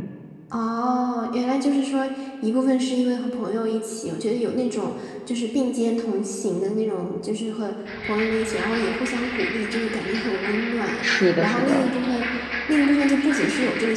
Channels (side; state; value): both; identical; correlation 1.00